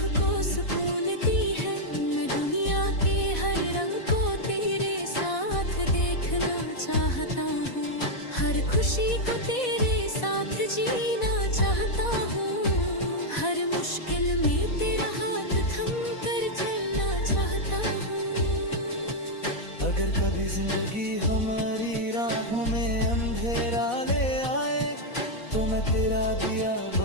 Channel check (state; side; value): late; right; 4.1 ms